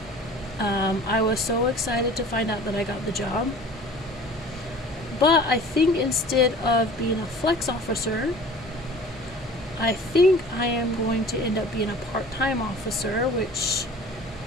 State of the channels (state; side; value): noise; left; hum, 25 dB below the sound